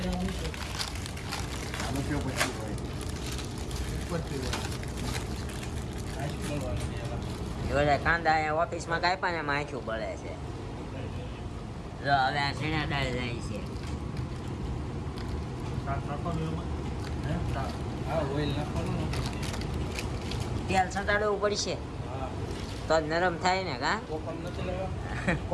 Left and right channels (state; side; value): identical; both; correlation 1.00